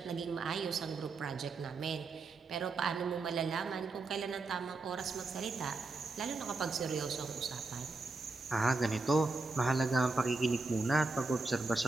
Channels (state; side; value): quieter; left; 3.6 dB